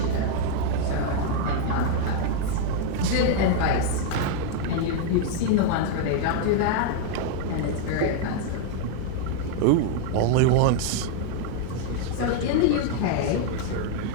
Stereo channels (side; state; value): both; different; correlation 0.00